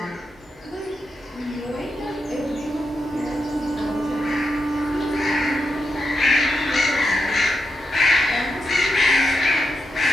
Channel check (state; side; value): normal; both; correlation 0.85